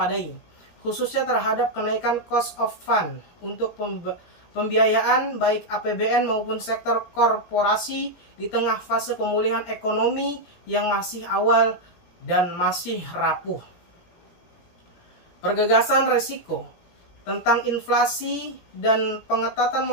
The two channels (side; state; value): right; late; 17 ms